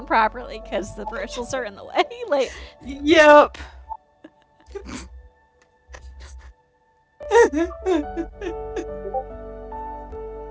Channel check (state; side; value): identical; both; correlation 1.00